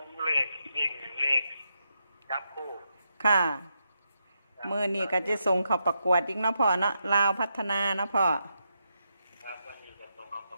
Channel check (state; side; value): inverted; both; correlation -0.83